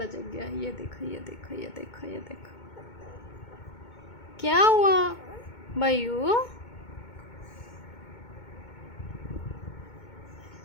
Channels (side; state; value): right; late; 2.2 ms